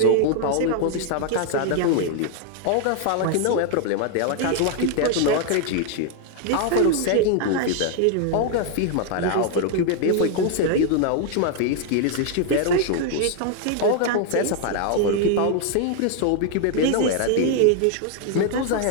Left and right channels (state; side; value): different; both; correlation 0.00